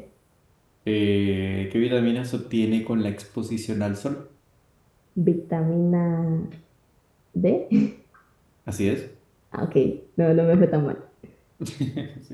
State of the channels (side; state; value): both; identical; correlation 1.00